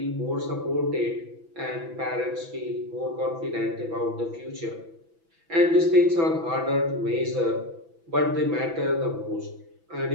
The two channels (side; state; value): left; late; 6.1 ms